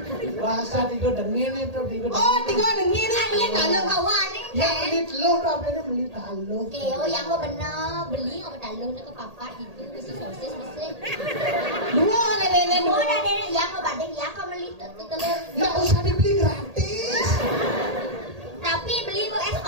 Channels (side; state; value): left; late; 1.8 ms